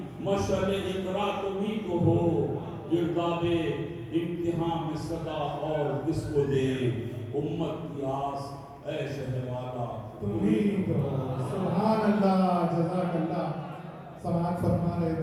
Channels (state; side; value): identical; both; correlation 1.00